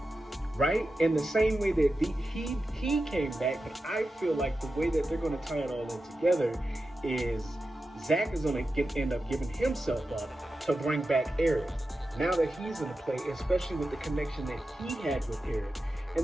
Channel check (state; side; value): normal; both; correlation 0.91